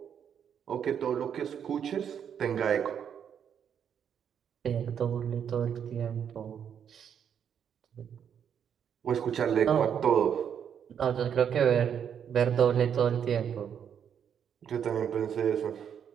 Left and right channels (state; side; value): quieter; left; 8.3 dB